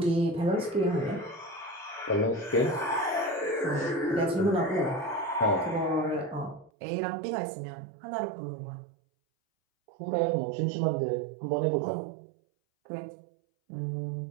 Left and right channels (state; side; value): drops out; left; at 6.7 s